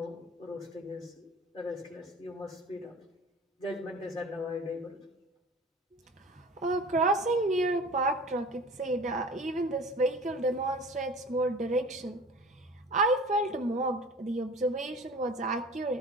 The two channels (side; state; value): both; normal; correlation 0.42